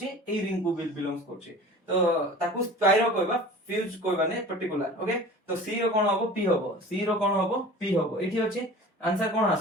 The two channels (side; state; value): both; normal; correlation 0.41